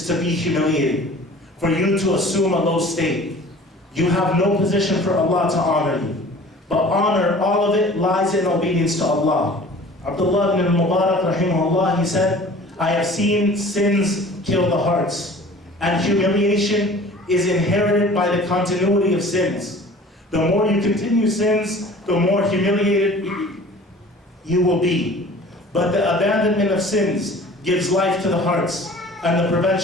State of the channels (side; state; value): both; normal; correlation 0.46